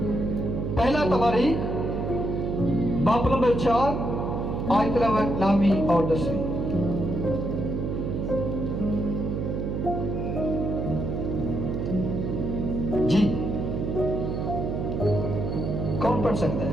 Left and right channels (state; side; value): noise; right; hum, 2 dB below the sound